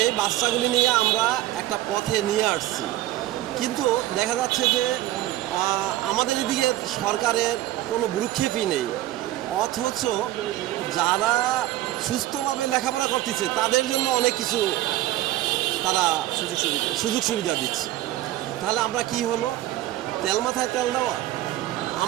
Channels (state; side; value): quieter; left; 15.1 dB